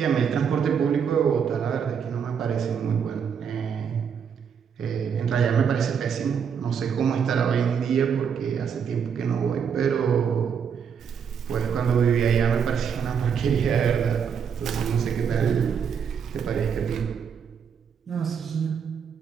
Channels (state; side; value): quieter; left; 7.2 dB